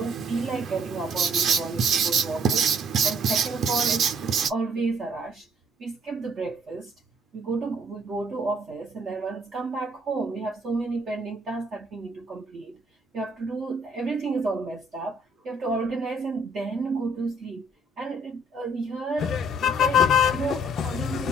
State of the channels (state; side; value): normal; both; correlation 0.63